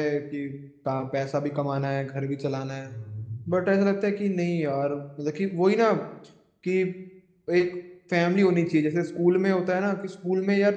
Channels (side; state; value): both; identical; correlation 1.00